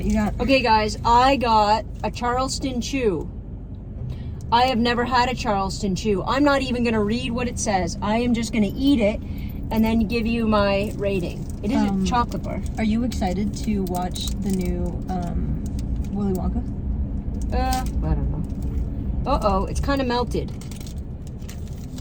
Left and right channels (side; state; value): both; identical; correlation 1.00